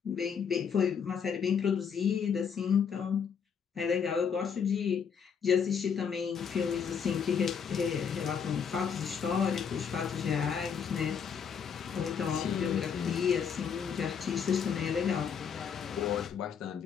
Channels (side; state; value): right; quieter; 6.9 dB